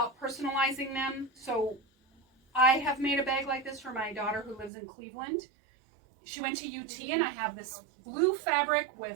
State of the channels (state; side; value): drops out; left; at 4.7 s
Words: personalizing them, so I have made a bag like this for my daughter who lives in Cleveland. She went to UT, and I have this blue fabric